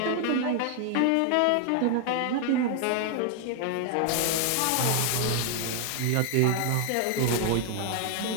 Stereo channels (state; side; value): different; both; correlation 0.00